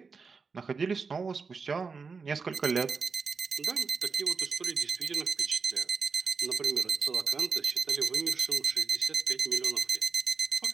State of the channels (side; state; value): left; quieter; 5.0 dB